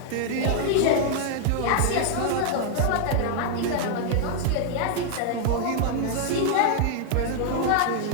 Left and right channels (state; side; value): different; both; correlation 0.00